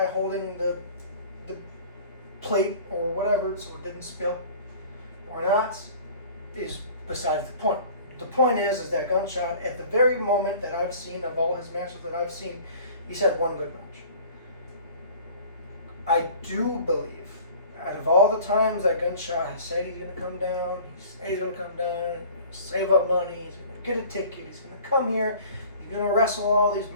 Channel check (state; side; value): inverted; both; correlation -0.46